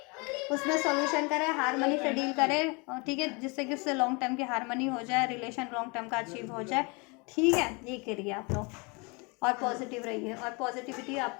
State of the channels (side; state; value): right; quieter; 29.8 dB